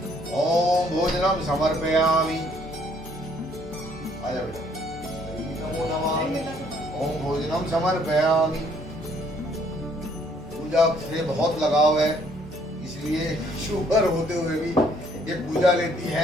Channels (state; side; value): normal; both; correlation 0.64